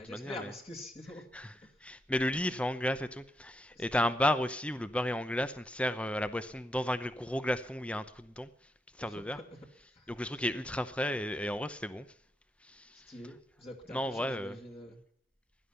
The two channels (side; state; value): both; normal; correlation 0.81